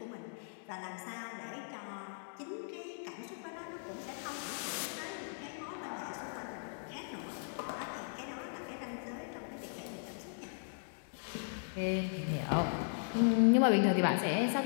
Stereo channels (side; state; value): right; silent; digital silence